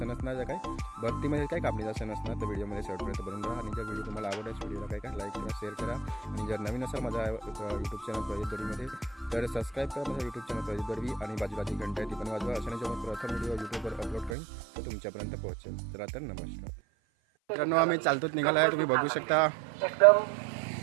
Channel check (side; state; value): left; drops out; at 14.4 s